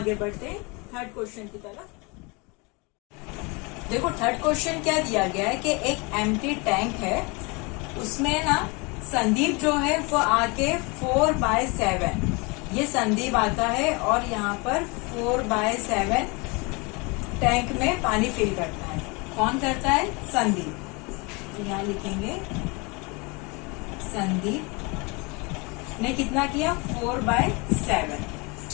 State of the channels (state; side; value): quieter; right; 28.6 dB